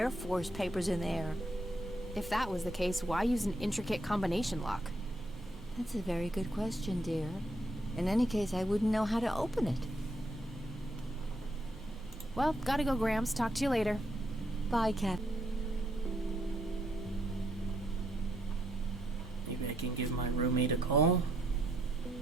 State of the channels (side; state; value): both; normal; correlation 0.75